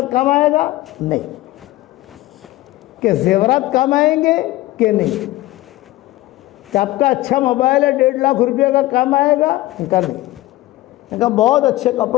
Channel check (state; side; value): quieter; right; 17.4 dB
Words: کام آئے گا؟ نہیں. کہ زیورات کام آئیں گے کہ نہیں؟ کہ آپ کا اچھا موبائل ہے 1.5 لاکھ روپے کا کام آئے گا؟ کہا نہیں. کہا بہت اچھے